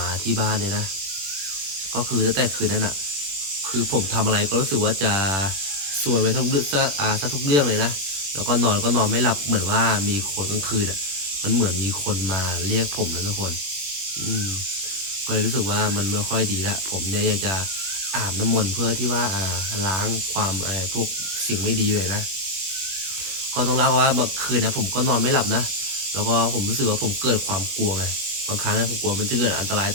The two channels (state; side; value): late; left; 21 ms